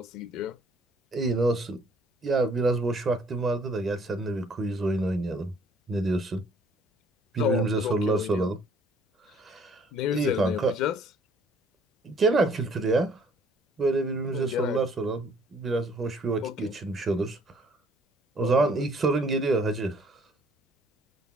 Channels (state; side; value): normal; both; correlation 0.59